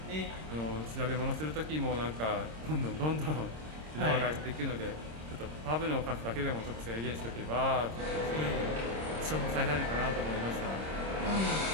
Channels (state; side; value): late; left; 26 ms